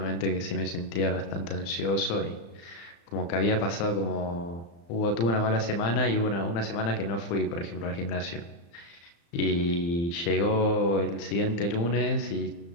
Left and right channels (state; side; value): late; right; 35 ms